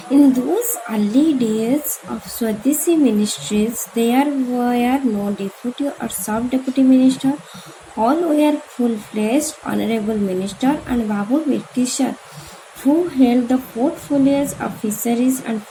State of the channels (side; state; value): both; identical; correlation 1.00